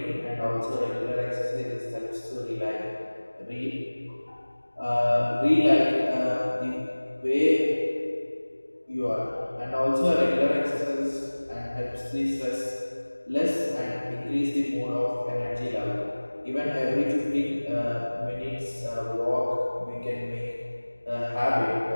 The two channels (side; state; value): both; inverted; correlation -1.00